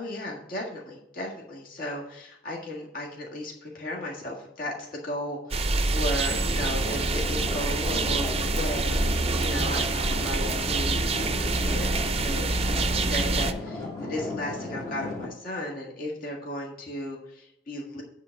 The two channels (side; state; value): both; normal; correlation 0.56